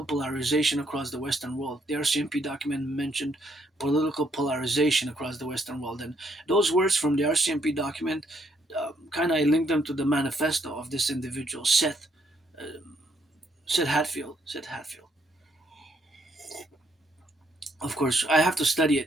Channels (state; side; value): normal; both; correlation 0.72